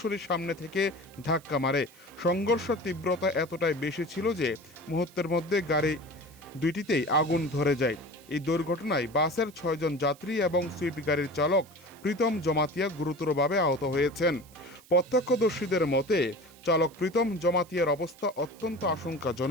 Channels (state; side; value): noise; right; hiss, 25 dB below the sound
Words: সামনে থেকে ধাক্কা মারে। সংঘর্ষের তীব্রতা এতটাই বেশি ছিল যে মুহূর্তের মধ্যে গাড়ি দুইটিতেই আগুন ধরে যায়। এই দুর্ঘটনায় বাসের ৬ জন যাত্রী এবং সুইফট গাড়ির চালক প্রীতম জমাতিয়া গুরুতরভাবে আহত হয়েছেন। প্রত্যক্ষদর্শীদের মতে, চালক প্রীতম জমাতিয়ার অবস্থা অত্যন্ত